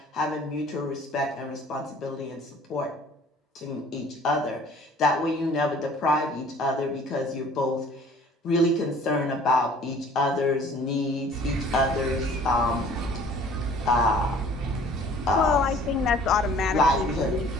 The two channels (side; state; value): both; normal; correlation 0.52